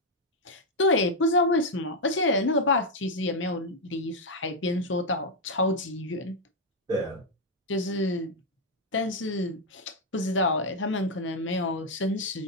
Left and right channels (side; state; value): both; normal; correlation 0.01